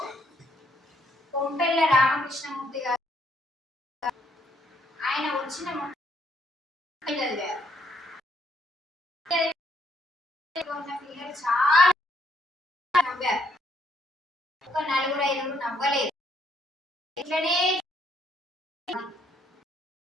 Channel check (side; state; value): both; normal; correlation 0.70